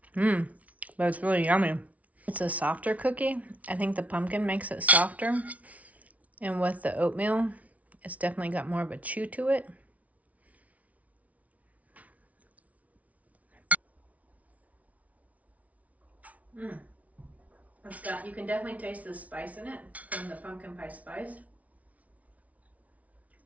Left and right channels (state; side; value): late; left; 0.069 ms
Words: But it's really yummy. It's a softer cookie. I think the pumpkin makes it softer. And with the oatmeal, it's definitely got more of a chew to it. You can definitely taste the spice in it from the pumpkin pie spice.